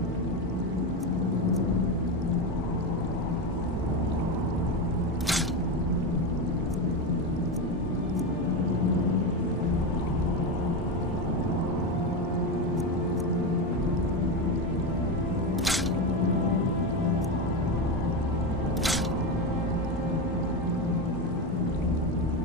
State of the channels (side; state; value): both; normal; correlation 0.14